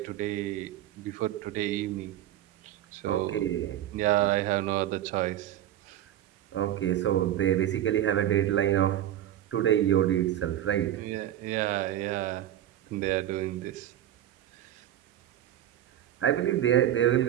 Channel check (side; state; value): left; quieter; 12.2 dB